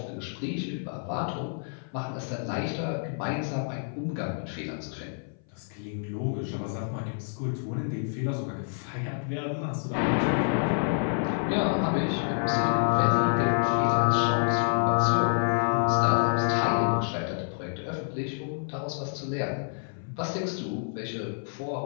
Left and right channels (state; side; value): silent; right; 57 dB below the other